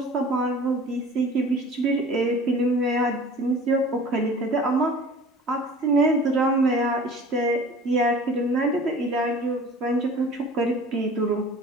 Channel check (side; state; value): both; normal; correlation 0.44